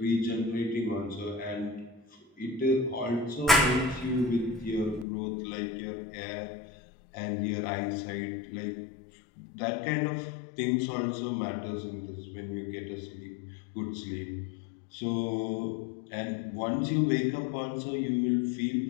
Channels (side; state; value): right; drops out; at 5.1 s